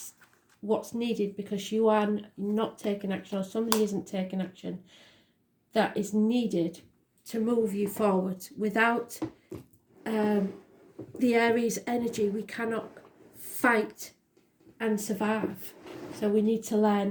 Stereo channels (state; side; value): identical; both; correlation 1.00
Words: what's needed, because you are not taking action, or somebody isn't taking action. That is needed to move you forward. Without the Aries energy, we cannot fight and survive. So we need to